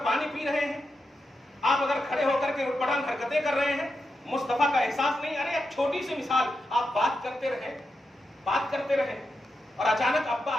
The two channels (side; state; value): both; normal; correlation 0.87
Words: پانی پی رہے ہیں، آپ اگر کھڑے ہو کر کے اٹپٹان حرکتیں کر رہے ہیں، مصطفیٰ کا احساس نہیں. ارے ایک چھوٹی سی مثال، آپ بات کرتے رہیں اور اچانک ابا